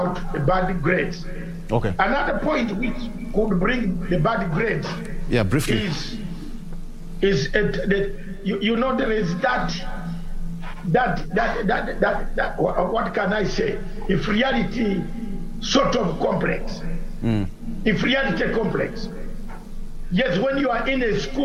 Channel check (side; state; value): both; identical; correlation 1.00